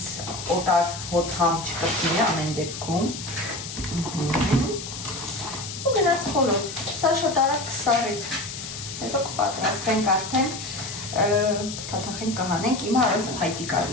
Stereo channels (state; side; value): noise; left; hiss, 9 dB below the sound